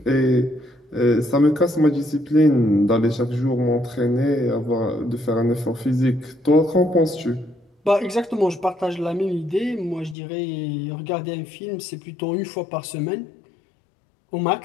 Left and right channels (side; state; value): right; drops out; at 10.2 s